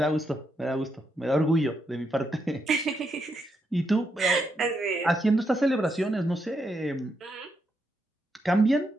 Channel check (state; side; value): normal; both; correlation 0.81